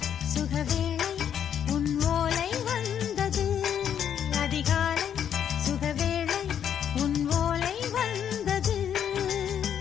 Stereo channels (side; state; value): right; quieter; 9.0 dB